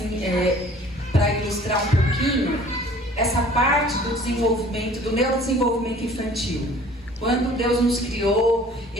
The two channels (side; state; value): both; normal; correlation 0.50